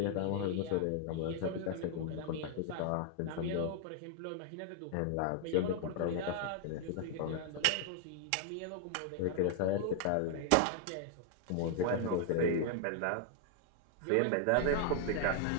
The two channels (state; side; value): different; both; correlation 0.00